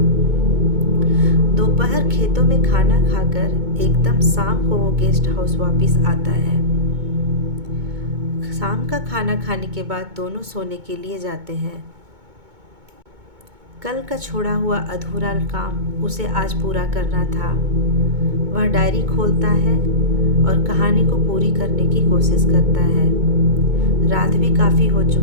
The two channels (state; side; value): late; left; 2.2 ms